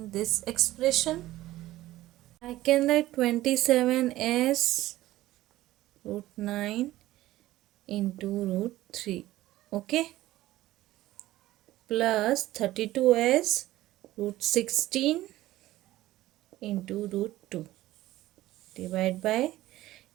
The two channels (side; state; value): left; quieter; 16.0 dB